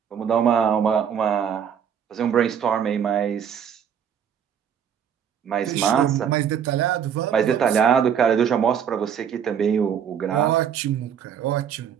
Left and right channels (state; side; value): quieter; left; 8.2 dB